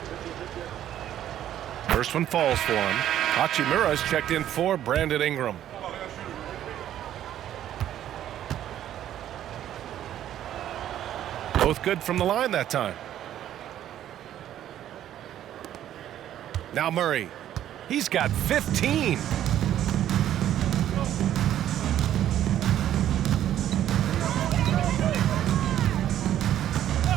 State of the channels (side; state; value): left; quieter; 11.5 dB